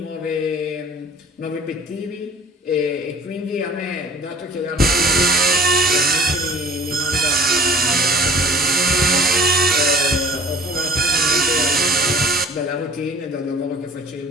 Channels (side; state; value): both; normal; correlation 0.48